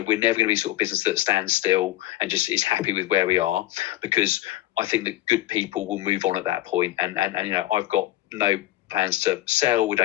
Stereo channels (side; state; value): right; quieter; 15.7 dB